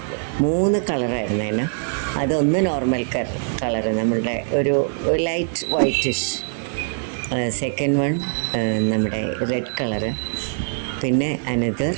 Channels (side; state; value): left; silent; 60 dB below the other